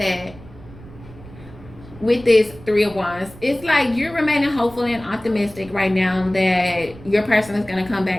with this Three of Wands, it's like you're remaining hopeful and optimistic right now that your person is going to come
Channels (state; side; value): noise; right; rumble, 19 dB below the sound